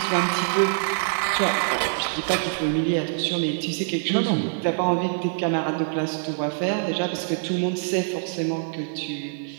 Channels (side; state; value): left; silent; digital silence